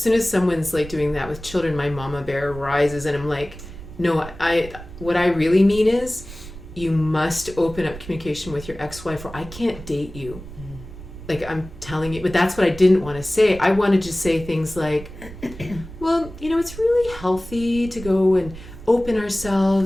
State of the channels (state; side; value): noise; right; rumble, 14 dB below the sound